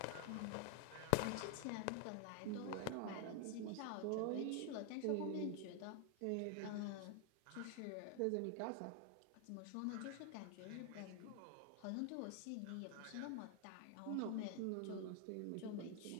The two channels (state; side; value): different; both; correlation 0.00